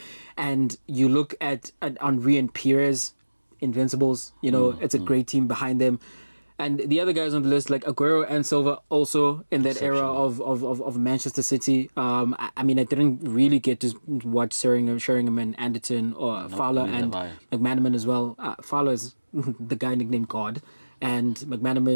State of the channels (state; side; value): inverted; both; correlation -1.00